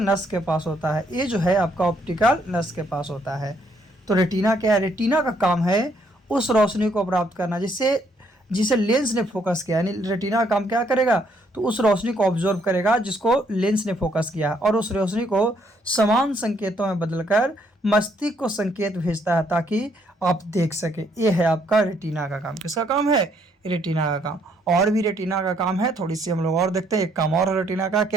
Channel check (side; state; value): both; normal; correlation 0.69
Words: नस के पास होता है। ये जो है आपका ऑप्टिकल नस के पास होता है। तो रेटिना क्या है? रेटिना का काम है उस रोशनी को प्राप्त करना जिसे लेंस ने फोकस किया। यानी रेटिना का काम क्या करेगा? तो उस रोशनी को ऑब्जर्व करेगा जिसको लेंस ने फोकस किया, और उस रोशनी को समान संकेतों में बदलकर मस्तिष्क को संकेत भेजता है ताकि आप देख सके। ये है आपका रेटिना का काम। किसका काम है? रेटिना का काम। और भी रेटिना का काम है, थोड़ी सी हम लोग और देखते हैं। एक काम और है रेटिना का,